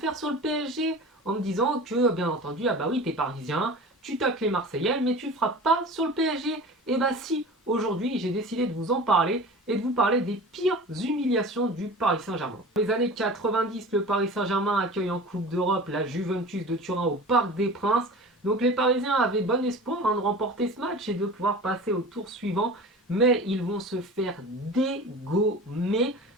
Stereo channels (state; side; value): normal; both; correlation 0.37